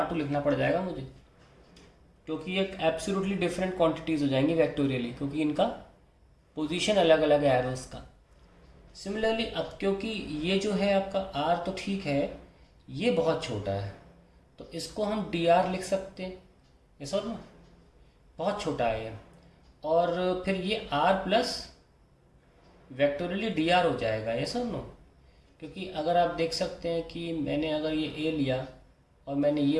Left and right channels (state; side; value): identical; both; correlation 1.00